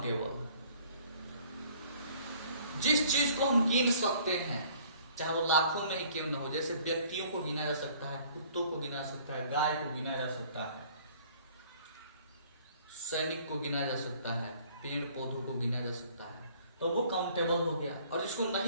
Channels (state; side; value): inverted; both; correlation -0.56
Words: जिस चीज को हम गिन सकते हैं, चाहे वो लाखों में ही क्यों न हो, जैसे व्यक्तियों को गिना जा सकता है, कुत्तों को गिना जा सकता है, गाय को गिना जा सकता है, सैनिक को गिना जा सकता है, पेड़ पौधों को गिना जा सकता है, तो वो काउंटेबल हो गया। और जिसको